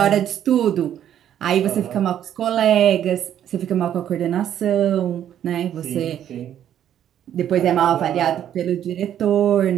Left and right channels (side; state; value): left; quieter; 10.4 dB